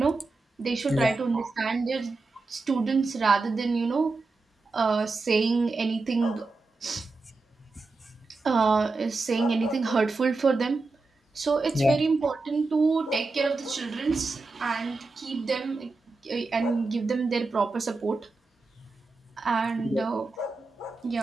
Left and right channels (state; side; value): quieter; left; 3.7 dB